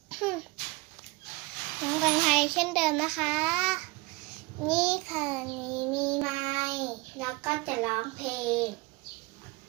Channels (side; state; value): left; quieter; 24.7 dB